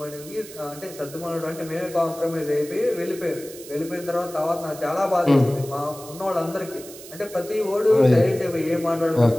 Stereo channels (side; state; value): right; noise; hiss, 16 dB below the sound